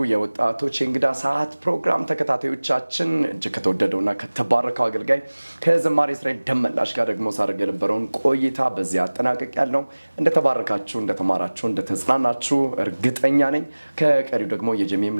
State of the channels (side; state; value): both; inverted; correlation -1.00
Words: የወጣቶች እንግዳ ሰዓት ፕሮግራም ተከታታዮቻችን እጅግ ከተወደደውና ከተባረከው አገልጋይ ከዘማሪ እስራኤል ደመላሽ ጋር ደግሞ ሳደርግ የነበረውን ቆይታ በዚህ አጠናቀቂያለሁ እንደተባረካችሁ እንደተማራችሁ እንደተጽናናችሁ እርግጠኛ ነኝ ከቀሪው ደግሞ